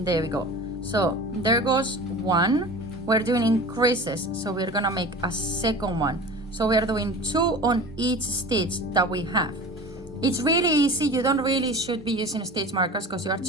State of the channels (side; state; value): both; normal; correlation 0.36